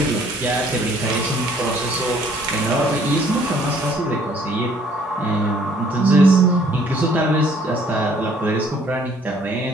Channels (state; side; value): normal; both; correlation 0.60